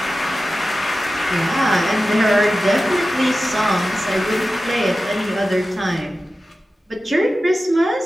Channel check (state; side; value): normal; both; correlation 0.94